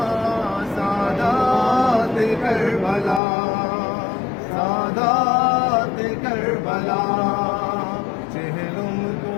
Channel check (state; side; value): drops out; right; at 3.2 s